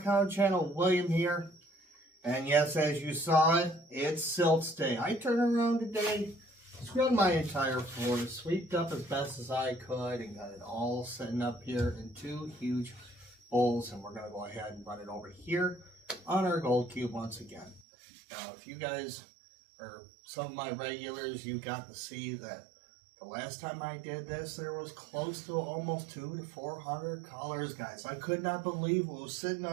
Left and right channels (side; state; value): left; drops out; at 17.8 s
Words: channel. William here. And yes, as you saw it, it's silts day. I turned around today, scrubbed my entire floor, swept up as best as I could, and got it all sitting up here in two huge bowls. And we're going to go ahead and run it over here on our gold cube once again. Now, if you guys are some of my regulars, you got to see that the last time I did this, there was close to almost 200 to 400 colors, guys. I could not believe what was sitting